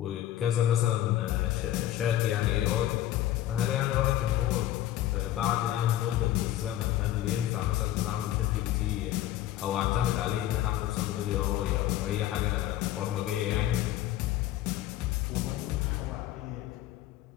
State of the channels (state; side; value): quieter; right; 13.3 dB